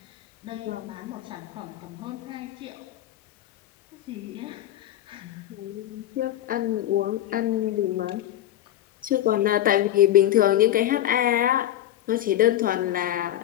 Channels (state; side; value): quieter; right; 12.7 dB